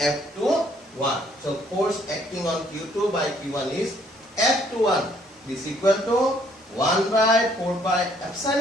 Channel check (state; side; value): normal; both; correlation 0.65